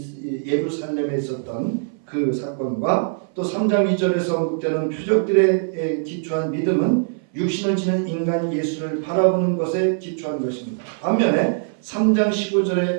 예루살렘에 있었던 그 사건과 또 3장 2절에서 언급되는 표적들에 기초한 믿음은 육신을 지닌 인간 예수를 바라보는 것에 기초한 것입니다. 반면에 3장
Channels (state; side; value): silent; left; 59 dB below the other